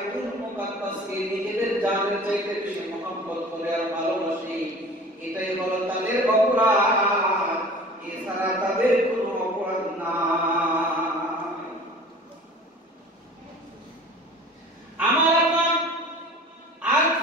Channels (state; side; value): normal; both; correlation 0.43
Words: মুকাদ্দাসকে নিজেদের জানের চাইতে বেশি মহব্বত করে আর ভালোবাসে। এটাই হলো তাদের অপরাধ, এছাড়া তাদের কোনো অপরাধ না। আমার আর